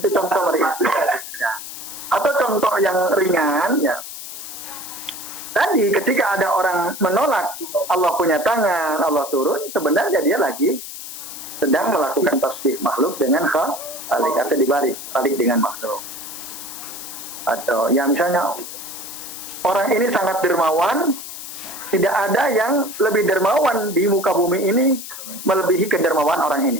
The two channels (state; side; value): noise; left; hiss, 10 dB below the sound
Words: Ya. Atau contoh yang ringan, ya. Tadi ketika ada orang menolak Allah punya tangan, Allah turun, sebenarnya dia lagi sedang melakukan tasbih makhluk dengan khalik atau dibalik dengan makhluk. Atau ya misalnya orang ini sangat dermawan, tidak ada yang lebih dermawan di muka bumi ini melebihi kedermawan orang